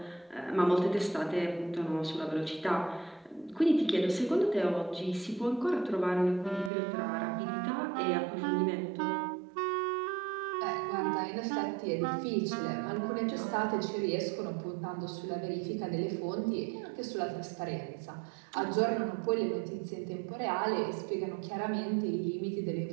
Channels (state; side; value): drops out; left; at 6.7 s